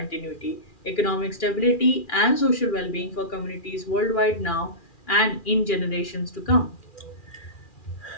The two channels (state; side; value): late; right; 2.4 ms